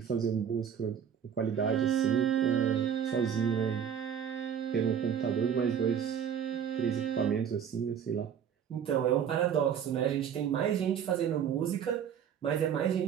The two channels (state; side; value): quieter; left; 8.2 dB